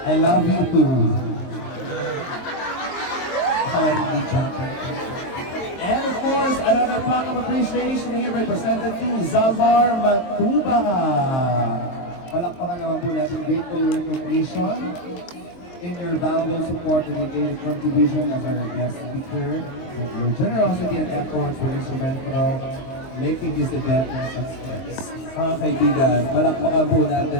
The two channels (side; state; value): right; late; 23 ms